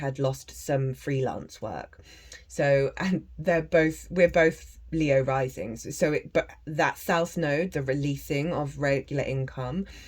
lost some freelance work. So, and we're both Leo risings. But that South Node, the releasing of regular income,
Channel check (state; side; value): identical; both; correlation 1.00